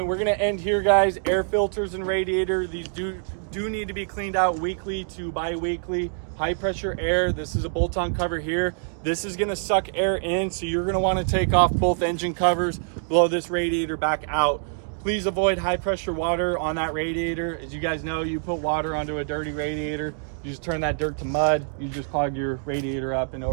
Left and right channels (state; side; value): silent; left; digital silence